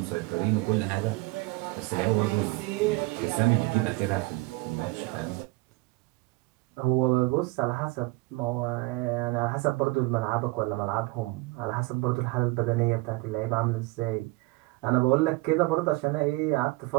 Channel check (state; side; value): quieter; left; 23.1 dB